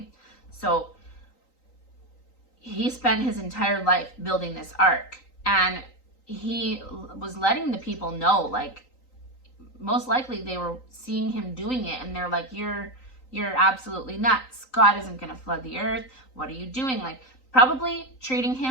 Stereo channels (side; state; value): right; late; 3.9 ms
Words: So he spent his entire life building this ark, and he was letting the people know, like, most likely they were seeing him doing it and they're like, you're absolutely nuts. God isn't going to flood the earth. What are you doing? Like, probably treating